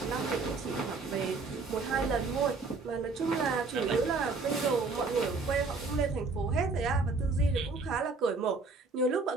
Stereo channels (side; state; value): left; quieter; 4.0 dB